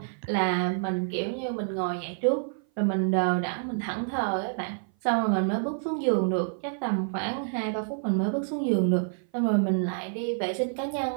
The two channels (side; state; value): left; silent; 57 dB below the other